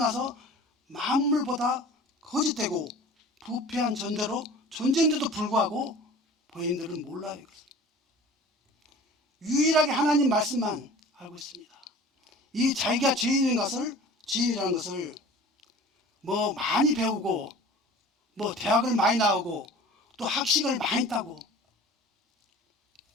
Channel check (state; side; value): normal; both; correlation 0.43